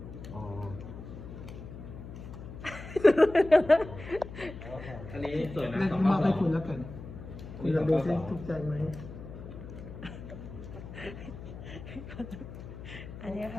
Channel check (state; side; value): noise; left; hum, 12 dB below the sound